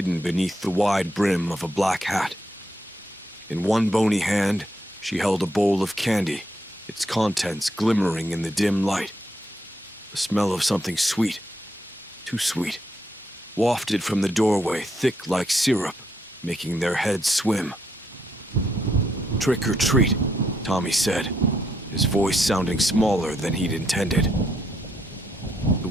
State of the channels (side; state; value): both; normal; correlation 0.77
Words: beneath the wide brim of a black hat. In one bony hand, she held a bowl of candy, its contents glimmering in the dim light. The smell of something sweet, too sweet, wafted from the doorway, thick like syrup, making their heads swim. "Trick or treat," Tommy said, his voice sounding smaller than he'd intended.